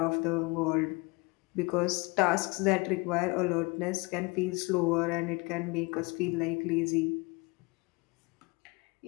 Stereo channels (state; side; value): quieter; right; 27.2 dB